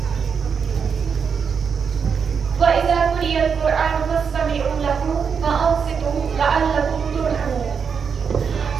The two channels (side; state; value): left; quieter; 6.4 dB